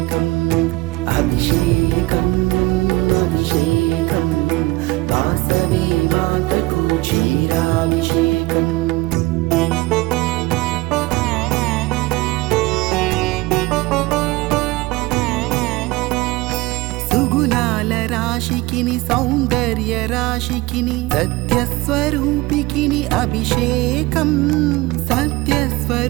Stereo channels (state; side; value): quieter; left; 20.8 dB